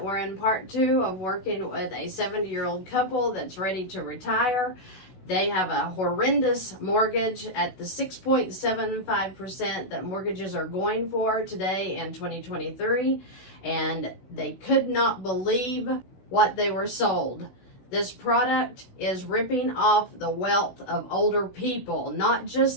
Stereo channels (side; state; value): right; late; 16 ms